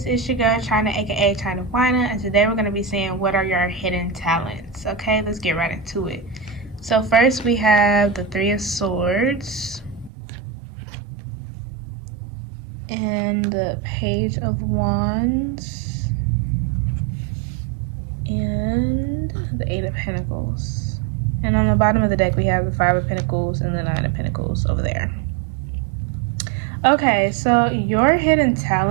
It's your girl China, aka China Wina, and today we're going to be seeing what are your hidden talents. Okay, let's get right into it. So first we have the Three of Swords and the Page of Wands and the Eight of Pentacles. And on the bottom of the deck we have the Five of Pentacles and the Nine of Pentacles over there. Okay, so your hidden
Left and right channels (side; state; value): left; drops out; at 10.1 s